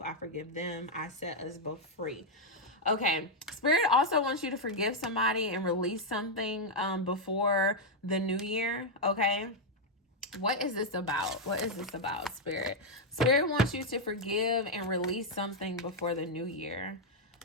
I forgive them. I set us both free. Okay, Spirit also wants you to forgive somebody and release something before the new year. Okay, what is this about? What is this about, Spirit? Spirit wants you to forgive and release something before the new year.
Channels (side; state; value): both; normal; correlation -0.01